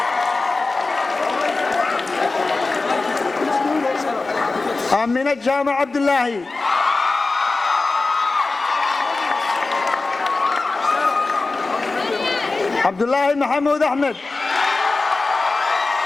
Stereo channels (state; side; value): quieter; right; 3.6 dB